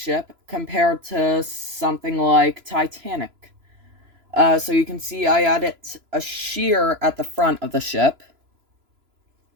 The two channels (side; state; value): left; late; 3.0 ms